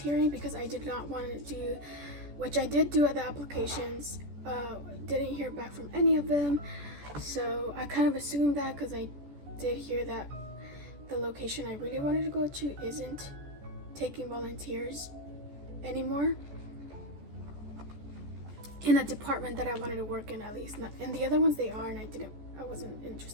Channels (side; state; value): left; late; 14 ms